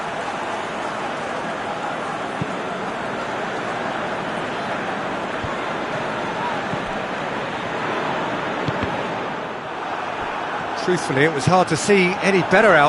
Truthfully, it was hard to see any better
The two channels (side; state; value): both; identical; correlation 1.00